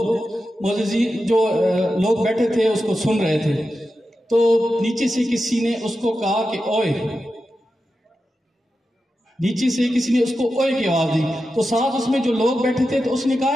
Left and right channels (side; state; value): both; normal; correlation 0.91